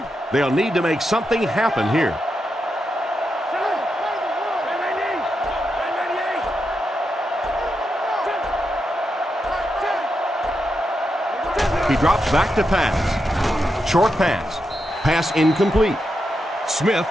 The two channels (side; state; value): both; normal; correlation 0.86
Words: They'll need to make something happen here. He drops back to pass. Short pass. Pass incomplete. Smith